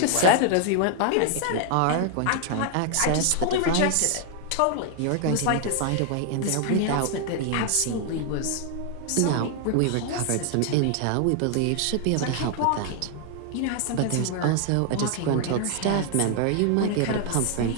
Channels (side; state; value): both; different; correlation 0.00